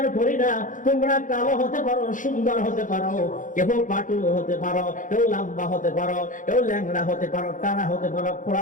করি না। তোমরা কালো হতে পারো, সুন্দর হতে পারো, কেউ পাটু হতে পারো, কেউ লম্বা হতে পারো, কেউ ল্যাংড়া হতে পারো, টানা হতে পারো,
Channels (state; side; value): late; right; 0.38 ms